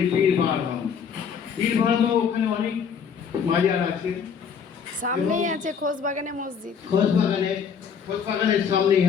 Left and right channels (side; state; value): right; quieter; 6.8 dB